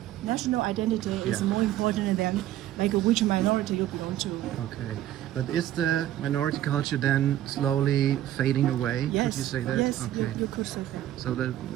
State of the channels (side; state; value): left; quieter; 13.0 dB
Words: identity is more important than like which minority you belong to. Okay, but is the minority culture then slowly fading away? Yes. Could you say that? Yes, okay. you could say that. So the